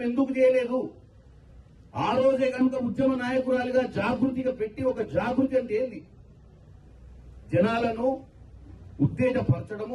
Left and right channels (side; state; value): both; identical; correlation 1.00